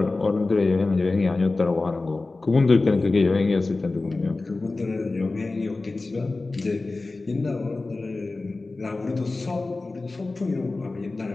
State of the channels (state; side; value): quieter; right; 3.4 dB